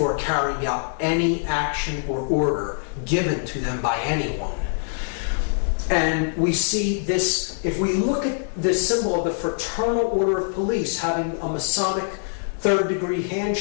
carrying out any action or order given to them by anyone. And we see this, if we look at the symbol of the Fraternal Order of Police having a Masonic third-degree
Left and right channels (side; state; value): right; silent; 63 dB below the other